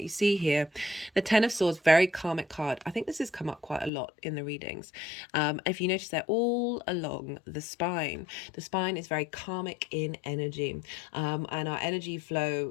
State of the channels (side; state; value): right; drops out; at 3.9 s